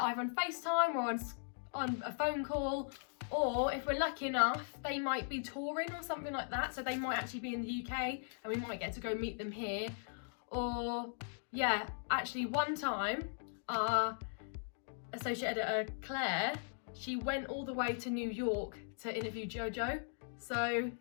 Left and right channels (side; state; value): right; silent; digital silence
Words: on FaceTime or on a phone call, or if we're lucky enough, they might be touring or something like that. So they might actually be in the UK and we might get to go meet them here. Or yeah, actually one time our associate editor, Claire, she went all the way to New York to interview Jojo. So